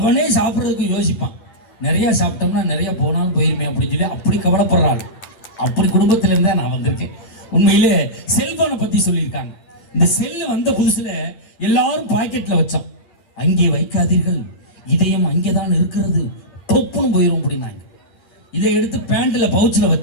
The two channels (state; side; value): late; right; 11 ms